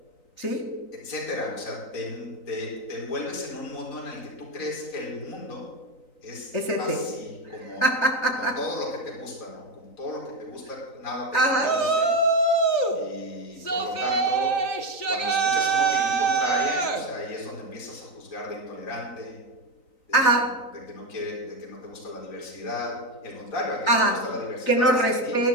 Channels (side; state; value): right; late; 3.9 ms